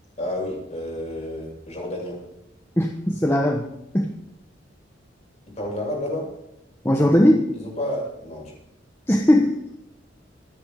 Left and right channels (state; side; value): normal; both; correlation 0.84